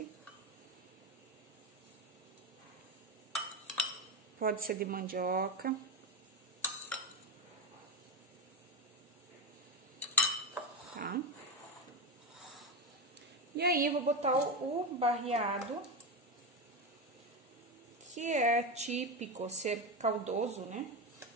Pode ser de mandioca. Tá? E aí, eu vou botar o barreado, que é típico ser caldoso, né?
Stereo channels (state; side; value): normal; both; correlation 0.12